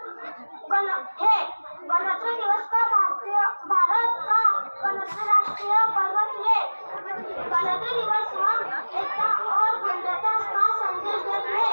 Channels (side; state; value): both; inverted; correlation -1.00